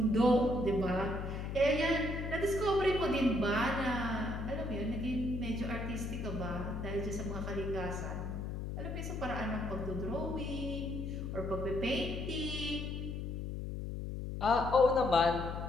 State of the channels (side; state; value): left; noise; hum, 4 dB below the sound